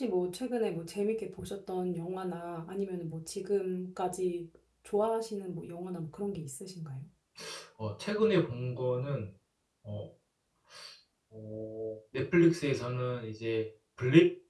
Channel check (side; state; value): both; identical; correlation 1.00